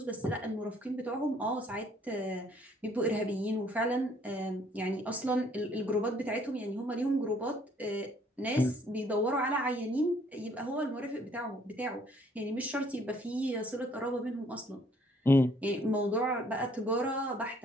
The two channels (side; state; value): both; normal; correlation 0.62